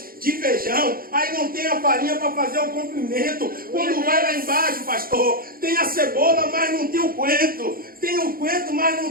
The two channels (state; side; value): late; left; 0.42 ms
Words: de feijão, aí não tem a farinha para fazer o comprimento. Quando vai lá embaixo, pastor, tem a cebola, mas não tem o coentro. Tem o coentro, mas não